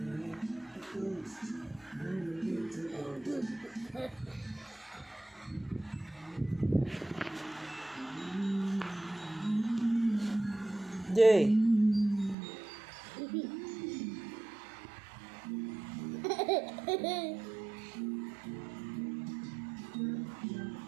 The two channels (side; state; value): left; drops out; at 12.4 s